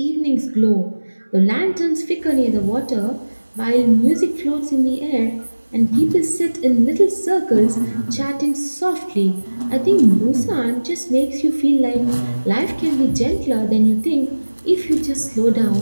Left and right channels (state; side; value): inverted; both; correlation -1.00